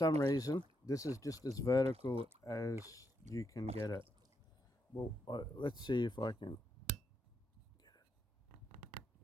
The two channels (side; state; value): both; normal; correlation 0.80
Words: reason, this is just as vertical as you can get it. Well, let's see if I can get